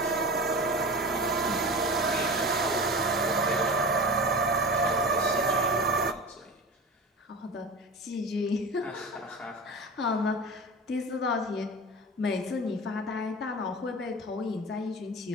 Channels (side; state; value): both; normal; correlation 0.31